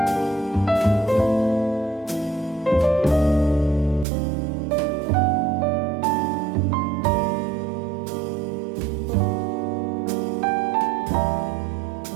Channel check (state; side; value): drops out; left; at 4.0 s